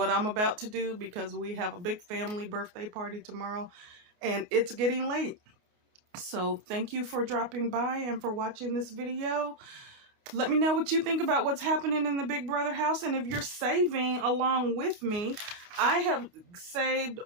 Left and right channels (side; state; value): left; late; 29 ms